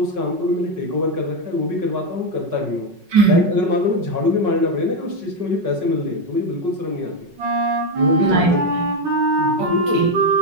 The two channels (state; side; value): late; left; 5.4 ms